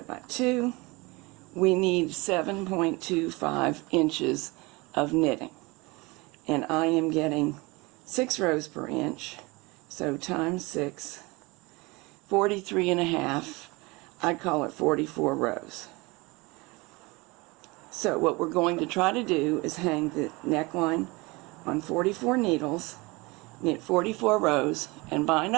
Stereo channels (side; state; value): left; quieter; 24.8 dB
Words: by 2. We need 7.25 inches of knitting, and I am getting 6 rows per inch, so times 6, 43.5. I'd call it 44 rows. So what we're going to try to do is hang the neckline on 44 needles, knit 44 rows, and bind